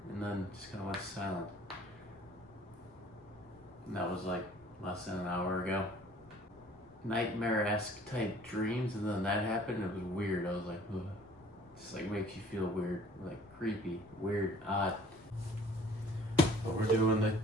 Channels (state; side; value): noise; left; rumble, 28 dB below the sound